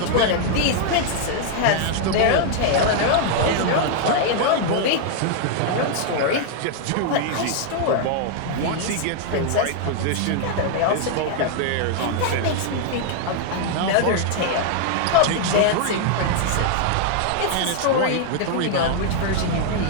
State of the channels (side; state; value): both; different; correlation 0.00